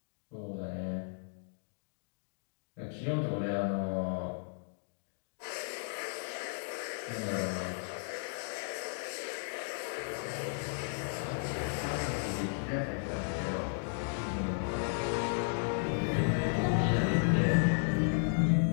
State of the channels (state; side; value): silent; right; digital silence